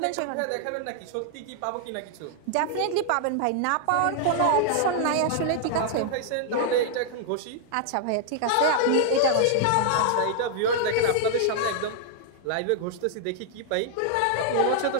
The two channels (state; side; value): different; both; correlation -0.01